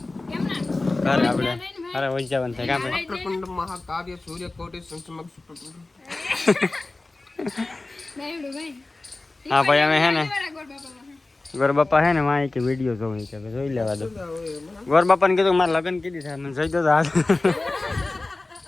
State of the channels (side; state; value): right; quieter; 3.1 dB